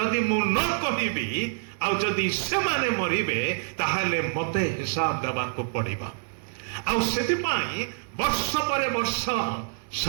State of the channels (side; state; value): left; silent; 60 dB below the other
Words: ମୁଁ ନ କହିବି ଆଉ ଯଦି ସେମାନେ ମରିବେ ତାହେଲେ ମତେ ହିସାବ ଦେବାକୁ ପଡ଼ିବ। ଆଉ ସେଥିପାଇଁ ବର୍ଷ ପରେ ବର୍ଷ,